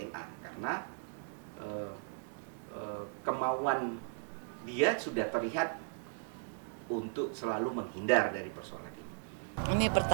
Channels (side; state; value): left; silent; digital silence